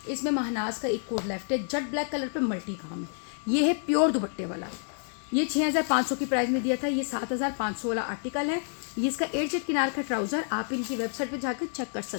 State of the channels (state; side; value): silent; right; 59 dB below the other